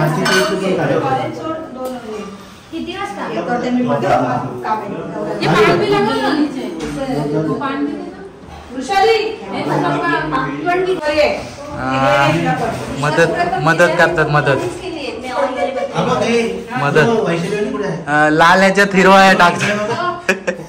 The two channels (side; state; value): both; identical; correlation 1.00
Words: किती वाजता ये करते मी बघते काम आहे. ये पाणी भी लगा ना नीचे. तो पाणी दे ना वृषाली. मदत करतात. मदत लाल ह्याच्यात हिरवा टाकतात.